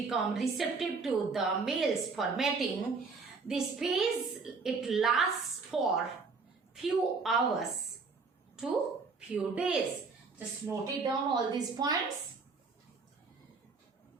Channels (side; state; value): left; quieter; 4.5 dB